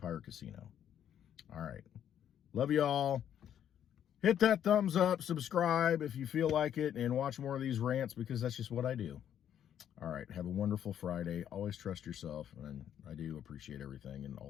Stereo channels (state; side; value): quieter; right; 9.8 dB